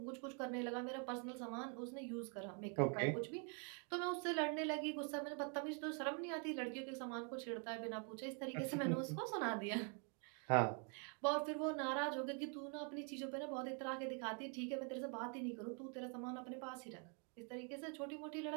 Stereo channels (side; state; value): left; quieter; 39.6 dB